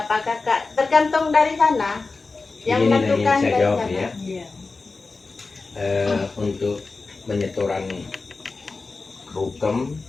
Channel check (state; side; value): quieter; right; 3.9 dB